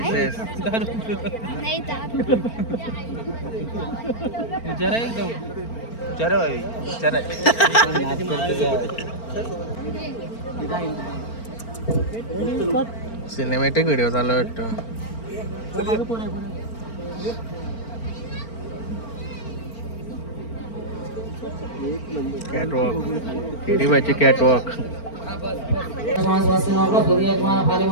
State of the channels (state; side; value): late; right; 4.4 ms